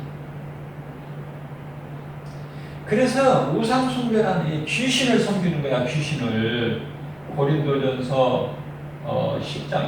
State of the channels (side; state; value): right; noise; rumble, 29 dB below the sound